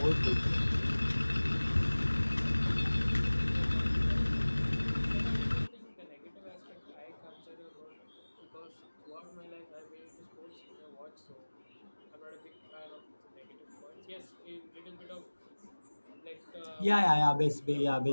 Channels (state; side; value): inverted; both; correlation -1.00